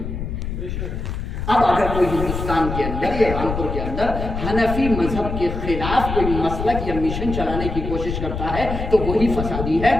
اب اگر کوئی ہندوستان کے اندر یا رامپور کے اندر حنفی مذہب کے خلاف کوئی مسلک یا مشن چلانے کی کوشش کرتا ہے تو وہی فسادی ہے،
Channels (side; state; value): left; noise; rumble, 5 dB below the sound